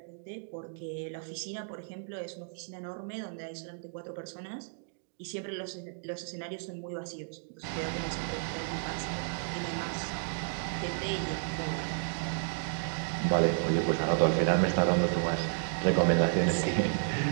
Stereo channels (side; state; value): left; silent; digital silence